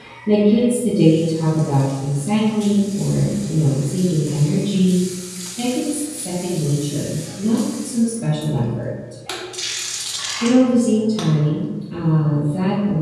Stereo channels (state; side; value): identical; both; correlation 1.00